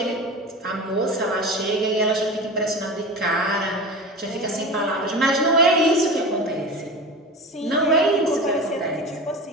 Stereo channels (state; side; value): normal; both; correlation 0.31